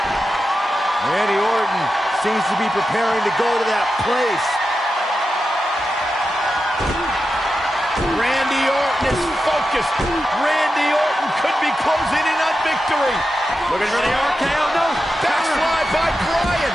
Randy Orton seems to be preparing to go to that place. Randy Orton is focused. Randy Orton could be closing in on victory. Looking for the RKO. No. Backslide by Bryan.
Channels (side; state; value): both; normal; correlation 0.90